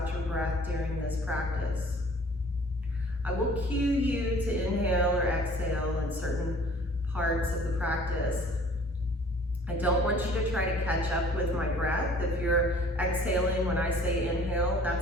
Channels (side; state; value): both; normal; correlation 0.52